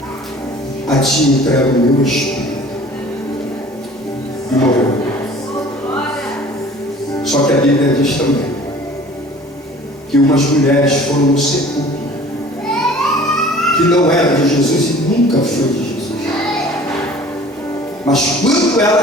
a ti entrego o meu espírito. E morreu. Só que a Bíblia diz também que umas mulheres foram no sepulcro que não era de Jesus e nunca foi de Jesus. Mas quando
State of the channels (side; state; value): both; normal; correlation 0.47